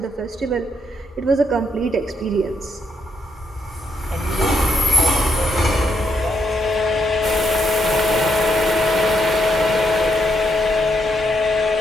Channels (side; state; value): both; normal; correlation 0.77